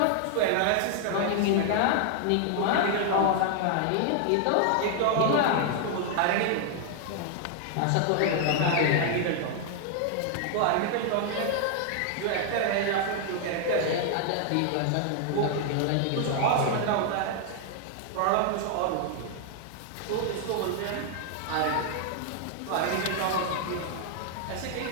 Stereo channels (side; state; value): both; different; correlation 0.00